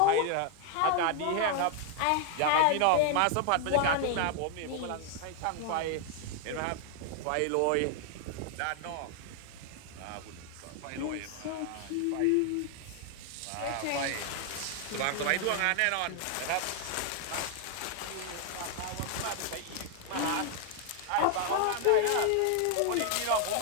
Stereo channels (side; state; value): both; different; correlation 0.00